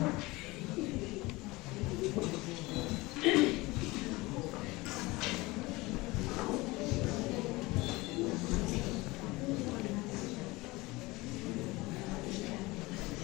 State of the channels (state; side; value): quieter; right; 21.9 dB